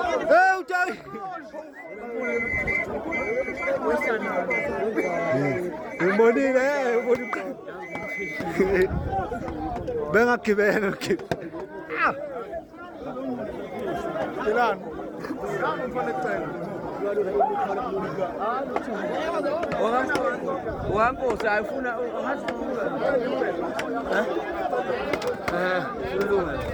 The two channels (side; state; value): both; identical; correlation 1.00